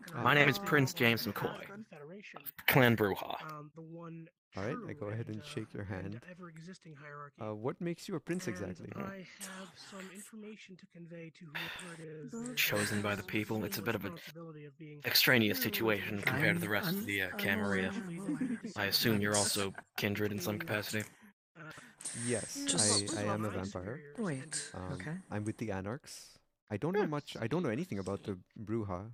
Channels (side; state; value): both; identical; correlation 1.00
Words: my name is Prince James McCoy, Clan Bruja. The one Alright, I go ahead and shake your hand. ever-existing hierarchy. What makes you a prince exactly? I have some information to convey to whoever it is. Chosen by the people, it's a bit of an extraneous situation compared to the rest of the Camarilla. I assume you're also kindred in some capacity? Yes, I am a vampire. Wait, okay. I'm with the Anarchs. I don't know much. I don't know anything about the Bruja,